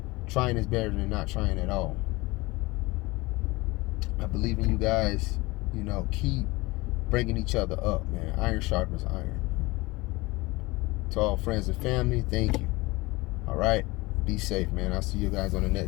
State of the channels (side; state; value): right; quieter; 22.2 dB